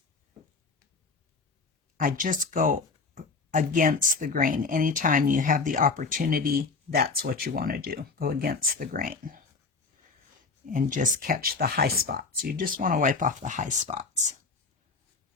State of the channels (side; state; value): right; quieter; 4.3 dB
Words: I just go against the grain. Anytime you have the opportunity, that's what you want to do. Go against the grain. and just catch the high spots. You just want to wipe off the high spots.